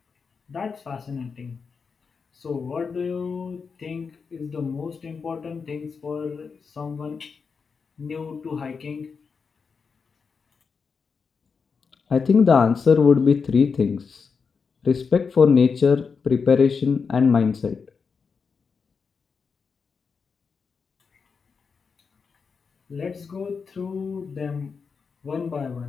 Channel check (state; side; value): quieter; right; 5.4 dB